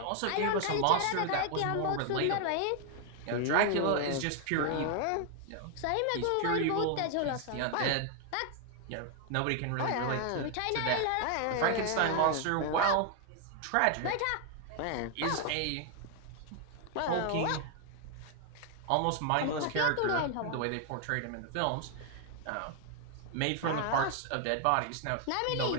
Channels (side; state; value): both; different; correlation 0.00